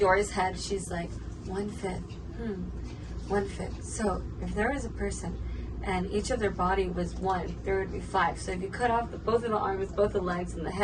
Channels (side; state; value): both; identical; correlation 1.00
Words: head, she's like 1/5. 1/5. So if there was a person and each of their body was 1, there would be 5. So if you cut off both of the arms, both the legs, and the